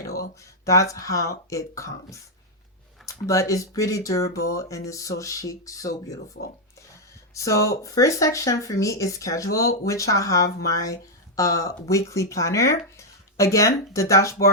That's how it comes. But it's pretty durable and it's so chic, so beautiful. So first section for me is schedule, which I have my weekly planner. Again, the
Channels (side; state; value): both; normal; correlation -0.01